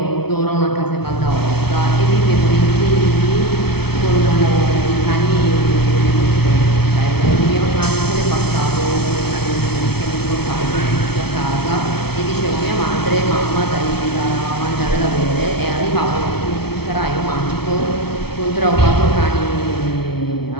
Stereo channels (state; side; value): late; right; 0.96 ms